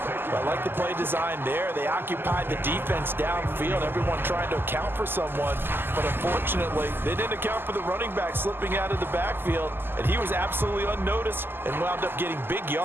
I like the play design there. They occupied the defense downfield, everyone trying to account for someone. But unfortunately, they didn't account for the running back slipping out of the backfield, and he was absolutely unnoticed and wound up getting big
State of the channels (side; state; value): left; late; 0.10 ms